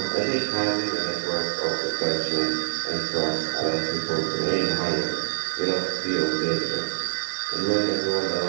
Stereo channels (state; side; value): silent; left; digital silence